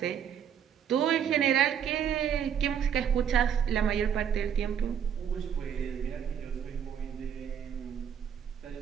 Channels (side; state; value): left; quieter; 8.4 dB